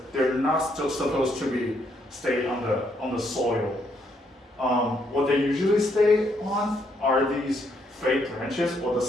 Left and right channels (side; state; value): both; normal; correlation 0.73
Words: they're not still supposed to be stay on the soil. What they usually stay on are these fake branches or the